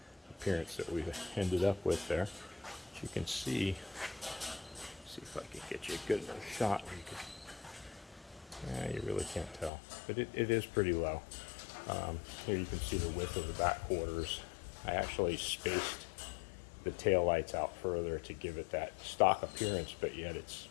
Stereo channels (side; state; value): right; drops out; at 9.7 s